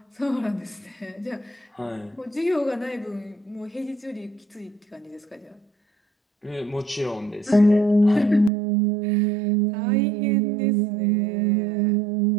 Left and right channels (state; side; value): drops out; left; at 8.5 s